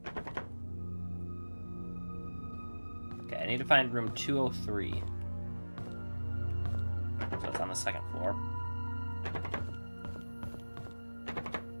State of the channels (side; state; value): both; inverted; correlation -1.00